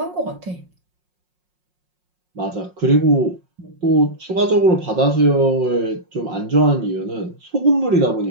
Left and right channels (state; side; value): late; left; 5.5 ms